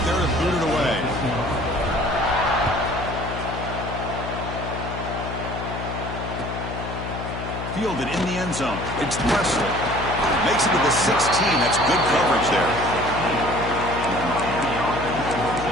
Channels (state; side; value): noise; left; hum, 7 dB below the sound